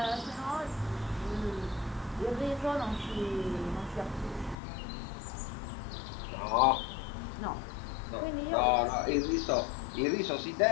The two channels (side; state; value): right; drops out; at 4.5 s